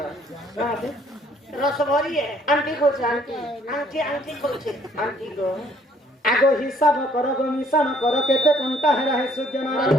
कहां से रस भरी है आंटी को जानती आंटी खोचे आंटी को आगो हिसाब कर गो मिशन कर केते कोंटा हेरा है सूर्य नारायण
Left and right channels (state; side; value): normal; both; correlation 0.62